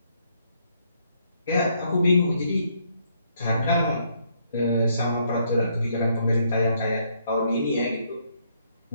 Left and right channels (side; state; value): both; inverted; correlation -0.71